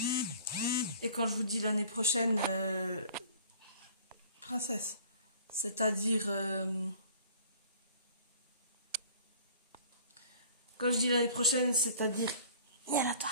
et quand je vous dis l'année prochaine, princesse, c'est-à-dire, quand je dis l'année prochaine, c'est-à-dire,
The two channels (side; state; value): both; inverted; correlation -0.49